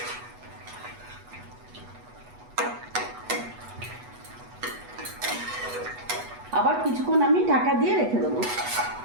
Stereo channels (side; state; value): left; late; 8.2 ms